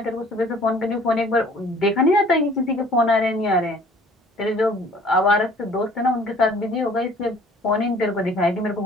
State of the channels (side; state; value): both; normal; correlation 0.53